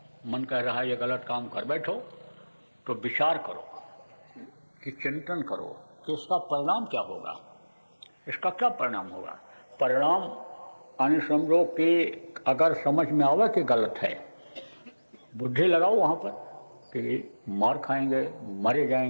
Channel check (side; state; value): both; inverted; correlation -1.00